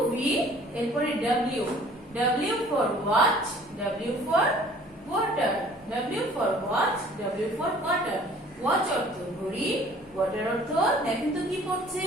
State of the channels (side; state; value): both; normal; correlation 0.52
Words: ভি, এরপরে W, W for watch, W for water, W for watch, W for water. Watch অর্থ ঘড়ি, ওয়াটার অর্থ দেখেন তো কি পড়ছে